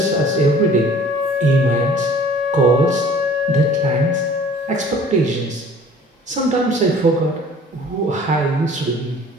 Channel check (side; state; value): both; normal; correlation 0.50